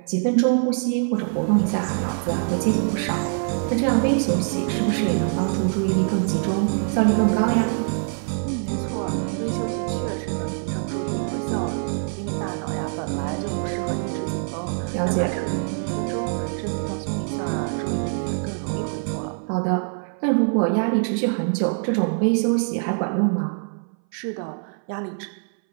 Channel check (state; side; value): silent; left; 60 dB below the other